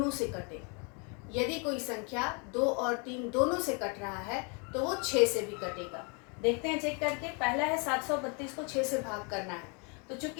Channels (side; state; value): right; quieter; 34.5 dB